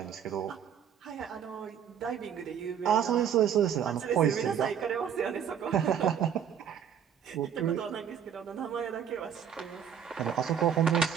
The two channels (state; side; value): quieter; left; 8.5 dB